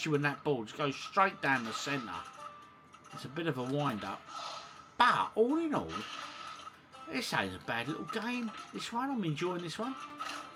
when that ball just goes straight down the centre. It's a bit of a wind-up. But, all in all, this ain't a bad little game. This one, I'm enjoying this one.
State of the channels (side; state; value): both; identical; correlation 1.00